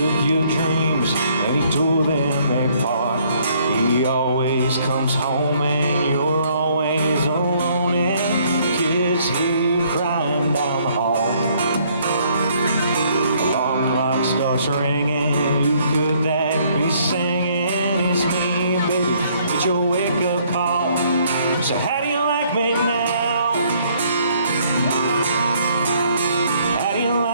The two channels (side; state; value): both; inverted; correlation -0.65